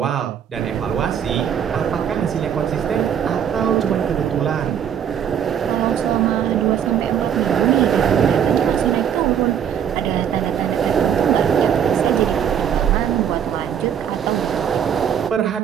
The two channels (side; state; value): left; quieter; 8.7 dB